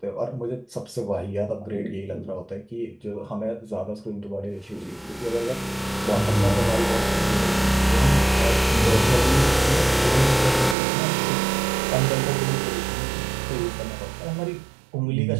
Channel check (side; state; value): left; drops out; at 10.8 s